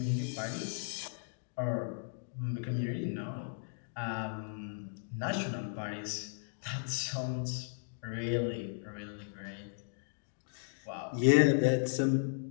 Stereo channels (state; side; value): silent; right; digital silence